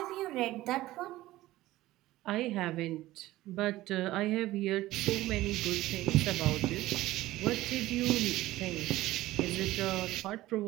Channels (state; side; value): quieter; left; 16.7 dB